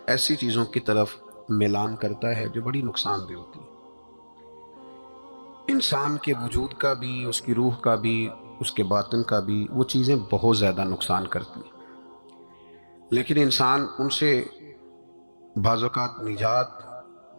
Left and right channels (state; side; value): inverted; both; correlation -1.00